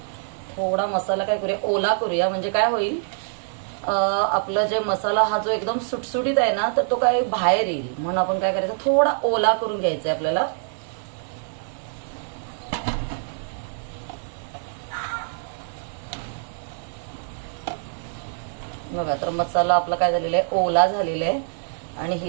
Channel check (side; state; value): left; silent; digital silence